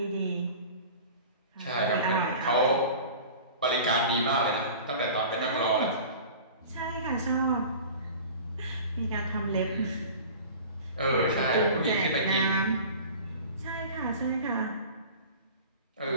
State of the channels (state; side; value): inverted; both; correlation -0.40